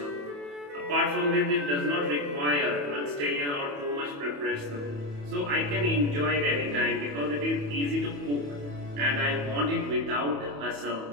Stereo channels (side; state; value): left; late; 28 ms